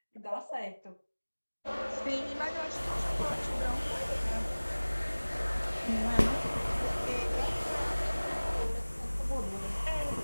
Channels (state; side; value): inverted; both; correlation -1.00